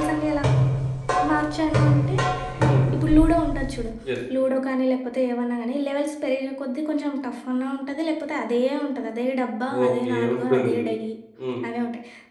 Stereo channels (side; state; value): both; identical; correlation 1.00